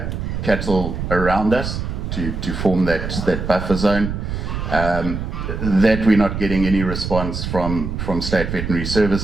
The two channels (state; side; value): noise; right; rumble, 4 dB below the sound